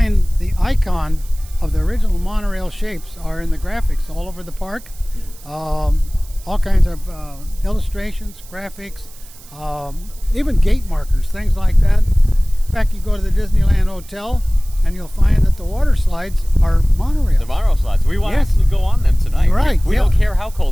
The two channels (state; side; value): noise; right; hiss, 22 dB below the sound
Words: the icon of the original monorail shapes are in the graphics all over the park. All kinds of illustrations, graphics, even gate markers, things like that. In fact, you go to the Disneyland Hotel and you'll find that the water slides are monorails. The monorail slides. We want to Yes. actually go on them tonight. Right, We yeah. don't care how